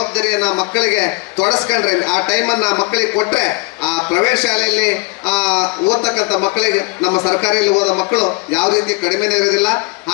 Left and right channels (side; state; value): right; quieter; 28.6 dB